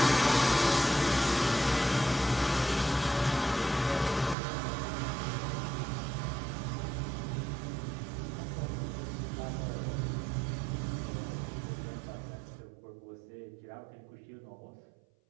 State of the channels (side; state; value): left; drops out; at 4.4 s